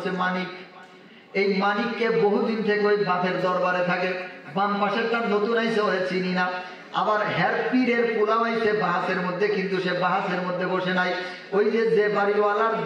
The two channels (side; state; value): both; identical; correlation 1.00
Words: মানিক। এই মানিককে বহুদিন থেকে ওই বাপের দরবারে থাকে। বাম পাশেরটা নতুন আইসে, ওরে চিনি না। আবার হের পীরের পোলাও আইছে বাহাসের মধ্যে, কিন্তু সে বাহাসের মধ্যে বসে নাই। ওই যে বাড়িওয়ালার